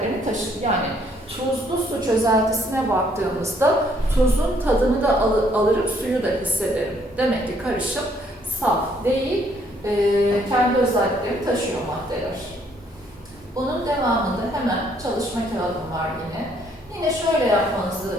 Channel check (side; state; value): both; normal; correlation 0.67